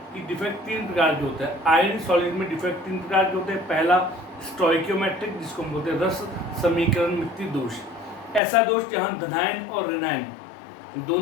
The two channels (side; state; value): right; drops out; at 8.4 s